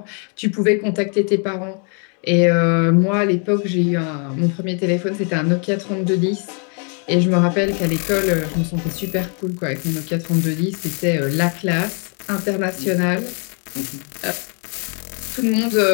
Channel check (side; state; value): right; quieter; 39.2 dB